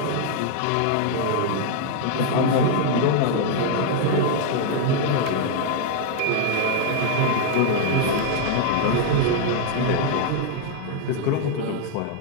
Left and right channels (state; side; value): different; both; correlation 0.00